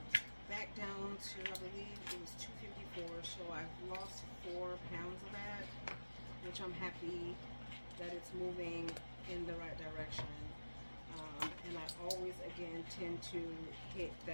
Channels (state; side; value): inverted; both; correlation -1.00